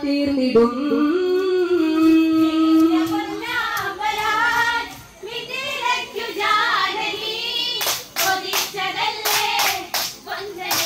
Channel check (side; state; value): both; identical; correlation 1.00